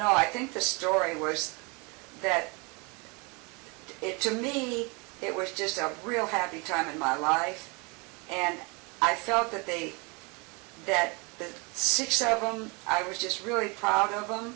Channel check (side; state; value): left; quieter; 29.9 dB